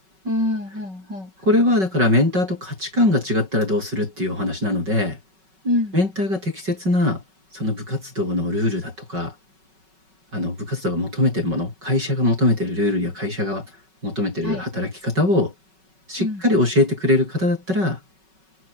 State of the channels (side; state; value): left; late; 5.3 ms